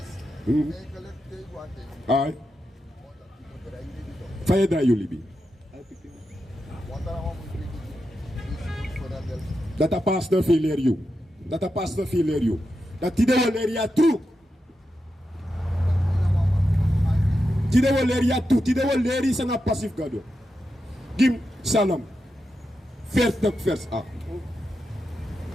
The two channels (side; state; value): both; normal; correlation 0.88